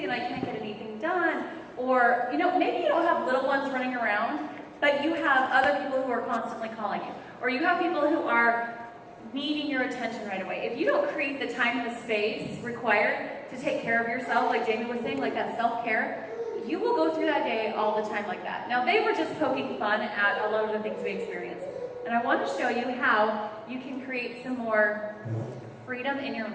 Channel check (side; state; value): both; identical; correlation 1.00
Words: and I can't get anything done. Or, maybe you don't have little ones running around, but you have other people who are constantly calling you. Or you have people who are needing your attention right away. If you don't create the time and the space required to take care of yourself, like Jamie was saying, like that self-care, you will go through that day all the time like that. Now, they were just poking fun at a lot of the things we experience. And I want to show you how you can create some more freedom in your